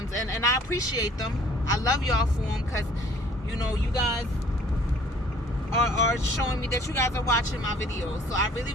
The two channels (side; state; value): both; normal; correlation 0.55